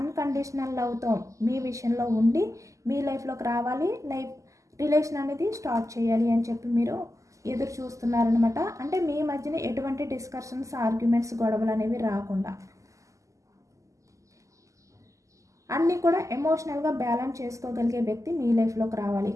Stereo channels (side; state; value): left; late; 0.16 ms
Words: లవ్తో మీ విషయంలో ఉండి మీ లైఫ్లోకి రావాలి, రిలేషన్ అనేది స్టార్ట్ చేయాలి అని చెప్పి మీరు ఎదురు చూస్తున్నారనమాట. అంటే మీ మధ్యన ఎటువంటి డిస్కషన్స్, ఆర్గ్యుమెంట్స్, గొడవలు అనేవి రాకుండా అన్నీ కూడా ఎమోషనల్గా బ్యాలెన్స్ చేసుకోగలిగే వ్యక్తి మీ లైఫ్లోకి రావాలి.